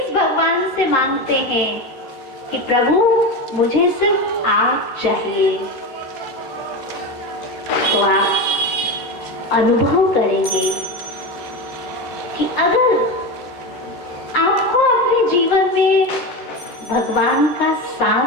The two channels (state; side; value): late; right; 13 ms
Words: भगवान से मांगते हैं कि प्रभु मुझे सिर्फ आप चाहिए, तो आप अनुभव करेंगे कि अगर आपको अपने जीवन में भगवान का